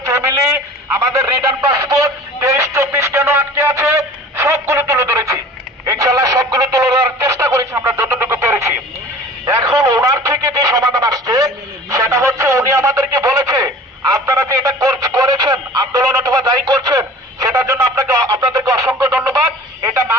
ফ্যামিলি, আমাদের রিটার্ন পাসপোর্ট, 23-24 কেন আটকে আছে সবগুলো তুলে ধরেছি ইনশাল্লাহ। সবগুলো তুলে ধরার চেষ্টা করেছি আমরা যতটুকু পেরেছি। এখন ওনার থেকে যে সমাধান আসছে সেটা হচ্ছে উনি আমাদেরকে বলেছে আপনারা যে এটা করেছেন আন্দোলন অথবা যাই করছেন সেটার জন্য আপনাদেরকে অসংখ্য ধন্যবাদ। এটা না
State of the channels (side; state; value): both; normal; correlation 0.43